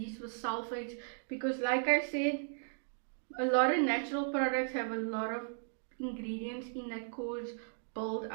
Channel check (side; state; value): left; silent; digital silence